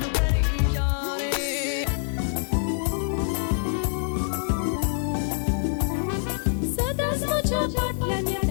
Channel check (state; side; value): silent; right; digital silence